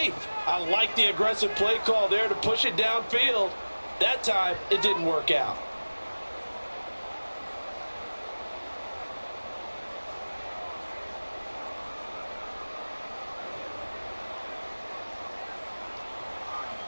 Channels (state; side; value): inverted; both; correlation -1.00